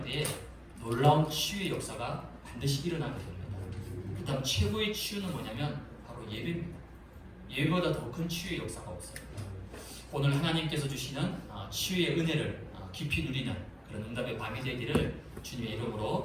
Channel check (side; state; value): both; identical; correlation 1.00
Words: 때에 놀라운 치유의 역사가 반드시 일어나게 됩니다. 그 다음 최고의 치유는 뭐냐면 바로 예배입니다. 예배보다 더 큰 치유의 역사가 없어요. 오늘 하나님께서 주시는 치유의 은혜를 깊이 누리는 그런 응답의 밤이 되기를 주님의